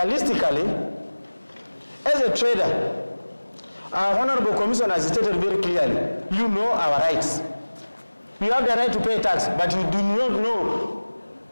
as a trader, our Honorable Commissioner has stated very clearly, you know our rights. You have the right to pay tax, but you do not know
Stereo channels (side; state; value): both; inverted; correlation -1.00